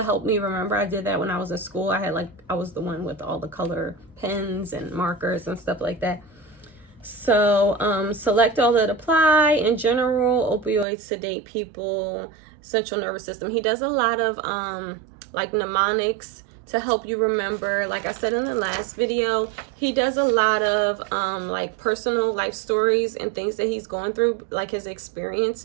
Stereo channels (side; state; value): left; drops out; at 10.9 s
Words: help me remember. I did that when I was in school. I was the one with all the color pens and markers and stuff like that. So select all that apply. In general, opioids sedate people, central nervous system. He does a lot of like mnemonics to help you remember. Like I said in the last video, he does a lot of like personal life stories and things that he's going through, like his